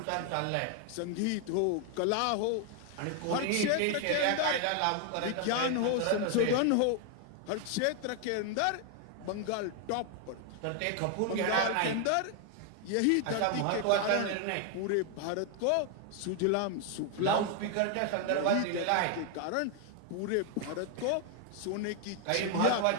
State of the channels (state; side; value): different; both; correlation 0.00